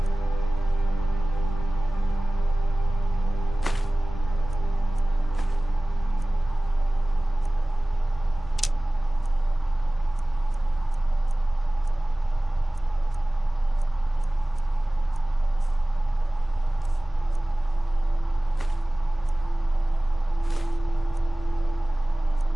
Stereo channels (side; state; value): both; normal; correlation 0.98